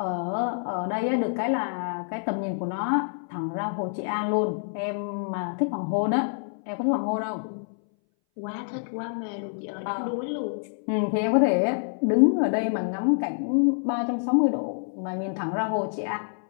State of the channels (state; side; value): silent; right; 59 dB below the other